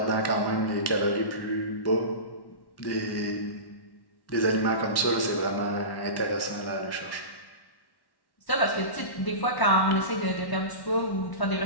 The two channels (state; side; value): late; right; 1.1 ms